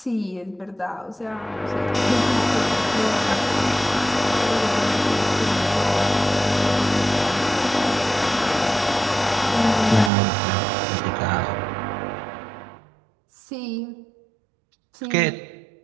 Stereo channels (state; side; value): drops out; left; at 10.1 s